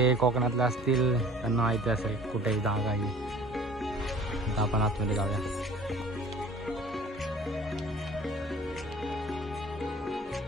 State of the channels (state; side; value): normal; both; correlation 0.48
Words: कोकणातले असतील त्यांना माहिती असेल कुठेही जागा आहे। आता आपण आतमध्ये जाऊया।